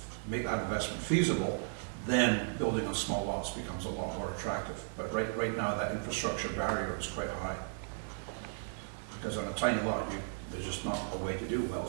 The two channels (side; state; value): left; silent; digital silence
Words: make that investment feasible, then building on small lots becomes a lot more attractive. But right now, that infrastructure barrier is quite high. Because on a tiny lot, there's just not a way to do